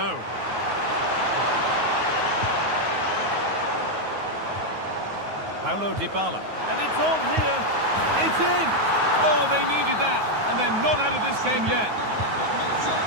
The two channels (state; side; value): late; left; 9.4 ms